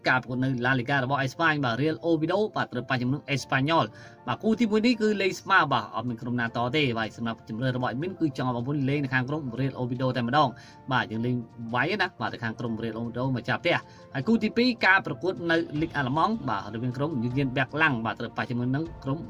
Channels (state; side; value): identical; both; correlation 1.00